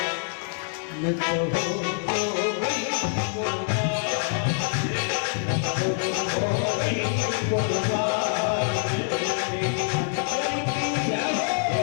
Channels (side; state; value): right; silent; 61 dB below the other